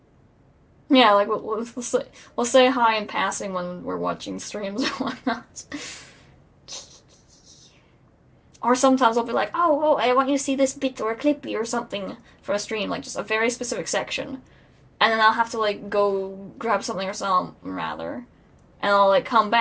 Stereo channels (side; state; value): both; identical; correlation 1.00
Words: Yeah, like, we'll say hi in passing when we're watching streams or whatnot. Or sometimes I'll be like, oh, I want you to see this bit or a clippy or something from a stream. Like, just a very specific section. And then I'll have to, like, go grab something or something, rather. And I'll, like, come